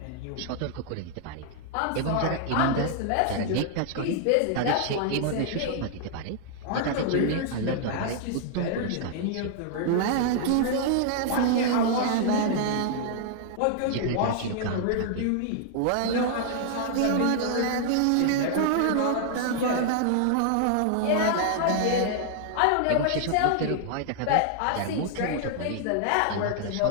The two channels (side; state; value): both; different; correlation -0.01